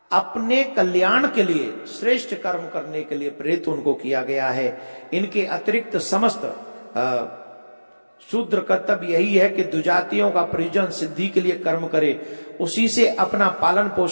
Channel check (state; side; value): inverted; both; correlation -1.00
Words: अपने कल्याण के लिए, श्रेष्ठ कर्म करने के लिए प्रेरित उनको किया गया है। इनके अतिरिक्त समस्त शूद्र कर्तव्य यही है कि दुजातियों का प्रयोजन सिद्धि के लिए कर्म करे, उसी से अपना पालन